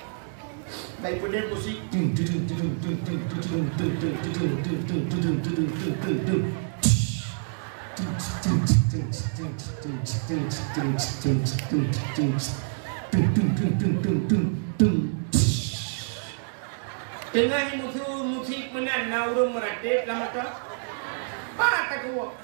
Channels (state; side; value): silent; left; digital silence